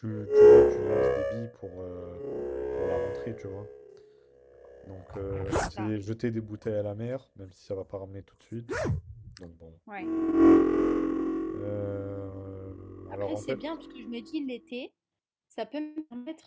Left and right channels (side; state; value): both; identical; correlation 1.00